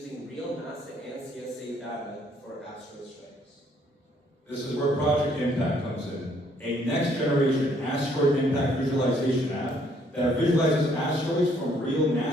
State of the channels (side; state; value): both; normal; correlation 0.66